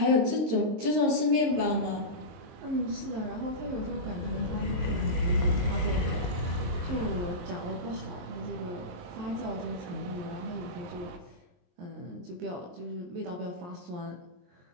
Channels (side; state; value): left; late; 23 ms